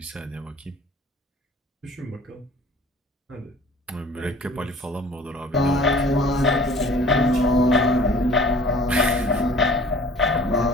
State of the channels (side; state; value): both; normal; correlation 0.48